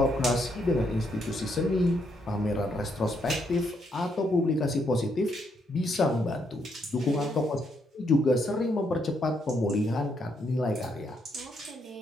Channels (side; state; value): both; normal; correlation 0.76